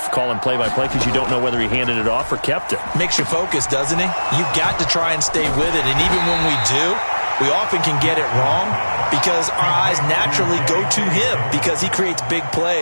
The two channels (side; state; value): both; inverted; correlation -1.00